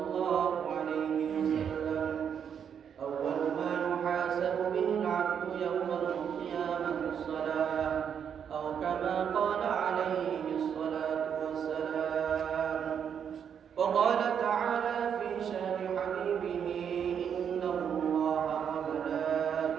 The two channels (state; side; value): quieter; left; 7.9 dB